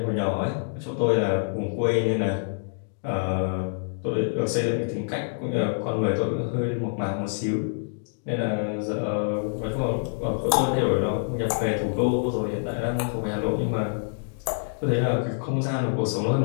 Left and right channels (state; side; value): silent; right; digital silence